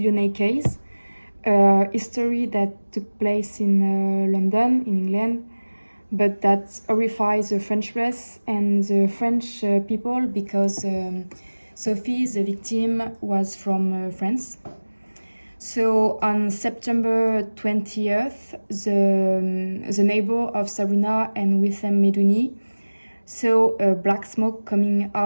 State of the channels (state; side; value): inverted; both; correlation -1.00